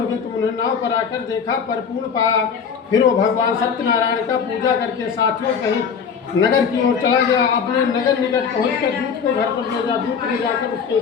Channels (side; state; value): right; quieter; 6.5 dB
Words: गए। तुम उन्हें नाव पर आकर देखा, परिपूर्ण पाया। फिर वो भगवान सत्यनारायण का पूजा करके साथियों सहित नगर की ओर चला गया। अपने नगर निकट पहुंचकर दूत को घर पर भेजा। दूत ले जाकर उसके